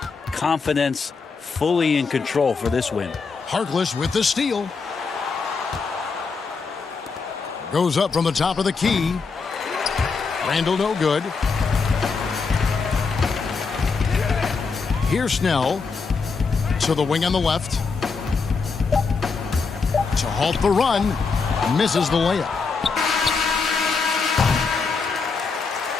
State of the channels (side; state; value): right; quieter; 4.8 dB